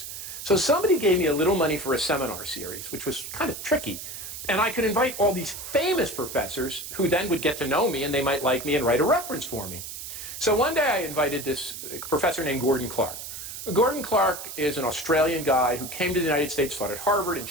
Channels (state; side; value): noise; right; hiss, 9 dB below the sound